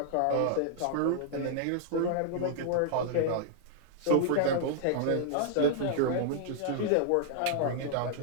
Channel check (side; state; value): both; different; correlation -0.01